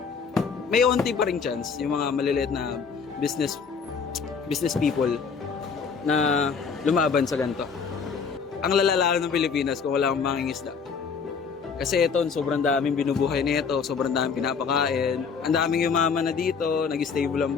may onti pa ring chance yung mga maliliit na business people na lumaban sa ganito. Ang lalala ng Pilipinas kung wala kang mangingisda. Kasi ito, sobrang daming binubuhay nito, sobrang daming pinapakain, ang daming yumaman na dito, nag-stable ang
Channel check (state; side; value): quieter; right; 5.8 dB